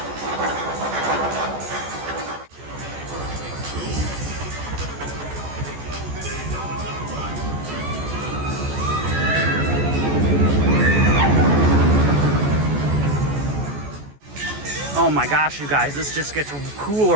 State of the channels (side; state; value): left; late; 14 ms